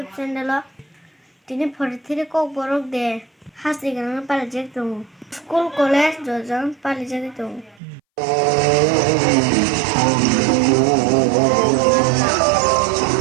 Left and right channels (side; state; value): left; drops out; at 7.8 s